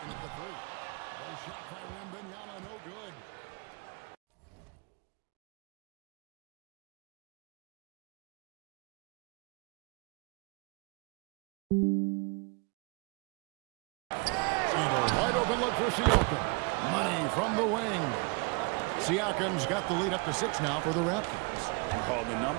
in at the three. A shot by Wembanyama, no good. And a wide open look for Siakam. Money from the wing. Siakam's got the lead up to 6 now for the Raptors. Oh, the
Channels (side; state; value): left; quieter; 31.0 dB